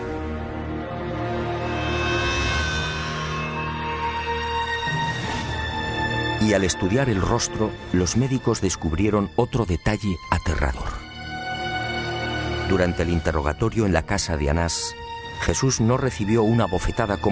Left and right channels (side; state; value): both; identical; correlation 1.00